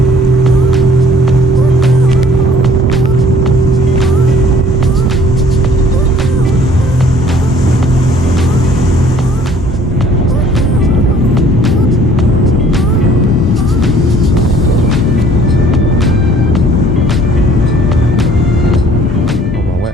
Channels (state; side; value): normal; both; correlation 0.56